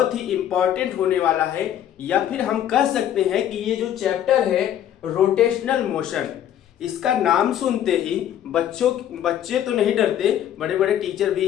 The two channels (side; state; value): right; quieter; 10.7 dB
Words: ही इंपॉर्टेंट होने वाला है, या फिर हम कह सकते हैं कि ये जो चैप्टर है रोटेशनल मोशन, इसका नाम सुनते ही बच्चे तो नहीं डरते, बड़े बड़े टीचर भी